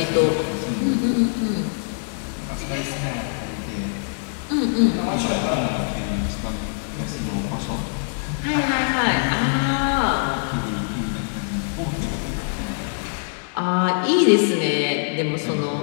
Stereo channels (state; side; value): silent; right; digital silence